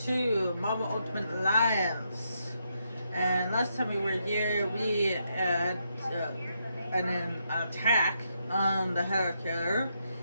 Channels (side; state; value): both; inverted; correlation -0.80